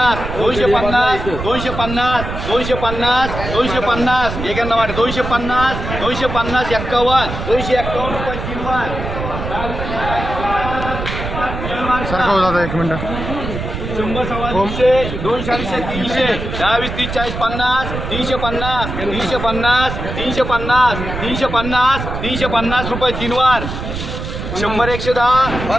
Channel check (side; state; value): right; noise; rumble, 6 dB below the sound